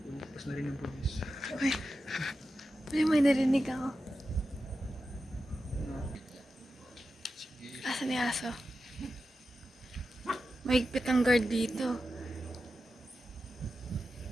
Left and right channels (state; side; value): normal; both; correlation 0.91